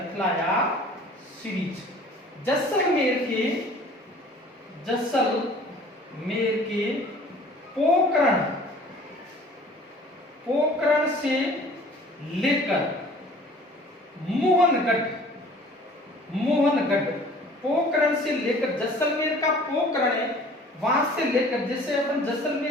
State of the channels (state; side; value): normal; both; correlation 0.49